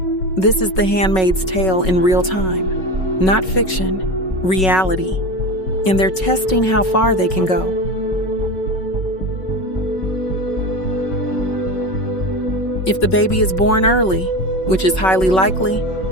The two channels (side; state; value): right; late; 5.4 ms